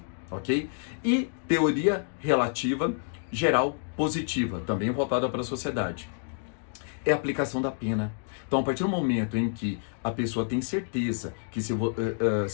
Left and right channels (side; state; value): right; silent; 59 dB below the other